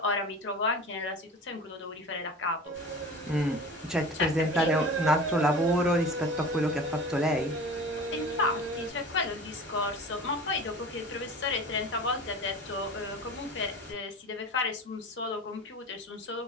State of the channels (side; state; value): both; normal; correlation 0.37